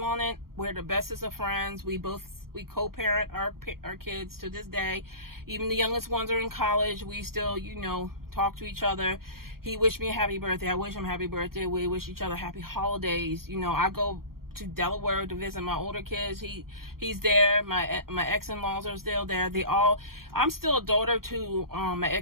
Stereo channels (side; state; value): left; late; 0.93 ms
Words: on it. We're the bestest of friends. We co-parent our kids to this day. Even the youngest ones are in college. We still, talk to each other. He wished me a happy birthday. I wish him a happy birthday. We wish each other happy holidays. I go to Delaware to visit my older kids. He's there. My ex-in-laws are still there. I'm still a daughter to my